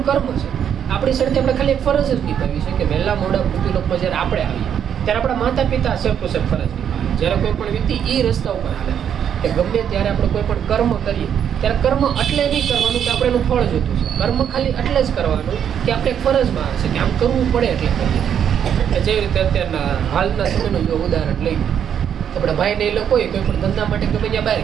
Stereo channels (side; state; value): left; quieter; 8.8 dB